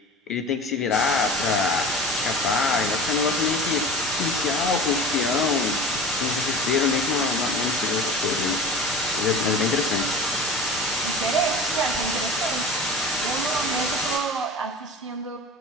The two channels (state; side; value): normal; both; correlation 0.36